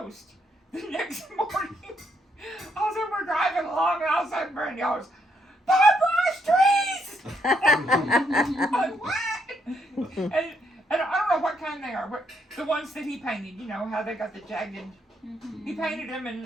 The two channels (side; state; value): both; normal; correlation 0.74